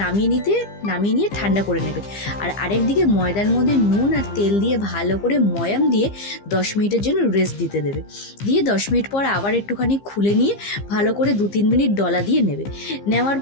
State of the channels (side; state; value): right; late; 15 ms